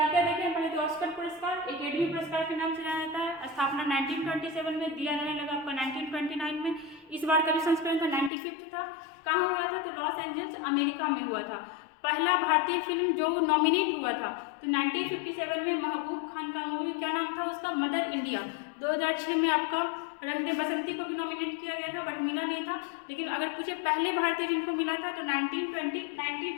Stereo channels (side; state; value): right; drops out; at 8.3 s